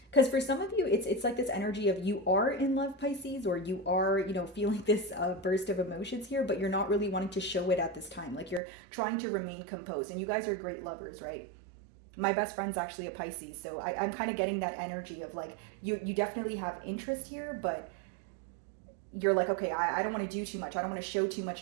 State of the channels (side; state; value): left; drops out; at 8.6 s